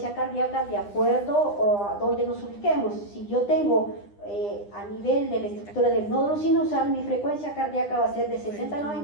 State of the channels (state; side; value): late; right; 9.9 ms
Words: cardíaca de acuerdo a donde nos ubiquemos. Si yo tengo a nivel de la estructura del nódulo sinusal, mi frecuencia cardíaca va a ser de 60 a